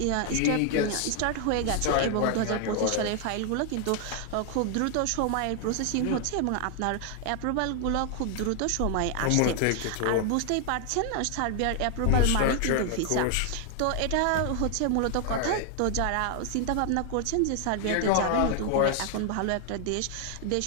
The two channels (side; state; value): both; different; correlation 0.00